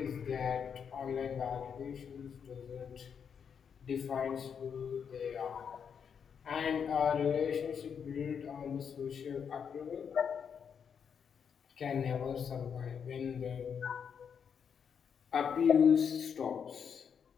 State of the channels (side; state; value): right; quieter; 7.1 dB